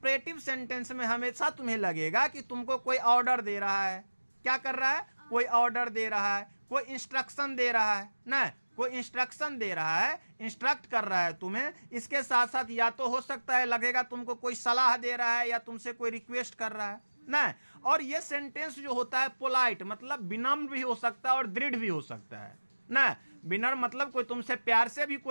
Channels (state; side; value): inverted; both; correlation -1.00